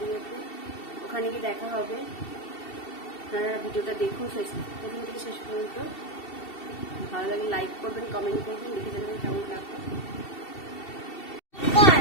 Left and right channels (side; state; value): right; late; 2.7 ms